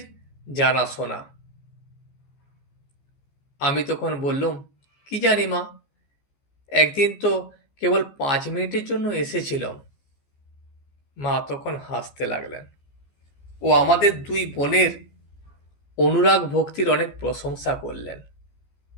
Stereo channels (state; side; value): late; right; 15 ms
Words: জানাশোনা। আমি তখন বললুম, কি জানি মা, একদিন তো কেবল 5 মিনিটের জন্য এসেছিলাম। মা তখন হাসতে লাগলেন ও আমাদের দুই বোনের অনুরাগ ভক্তির অনেক প্রশংসা করলেন।